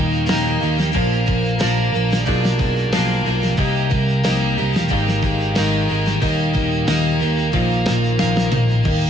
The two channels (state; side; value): normal; both; correlation 0.73